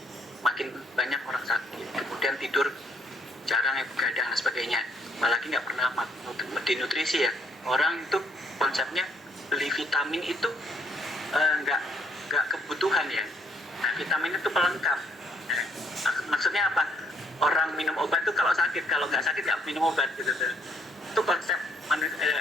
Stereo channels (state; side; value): normal; both; correlation 0.70